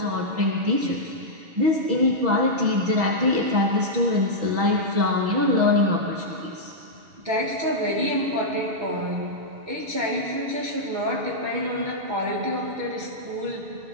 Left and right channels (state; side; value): late; left; 6.2 ms